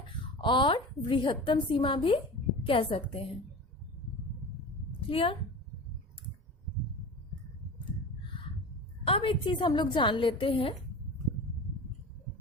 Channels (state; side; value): normal; both; correlation 0.33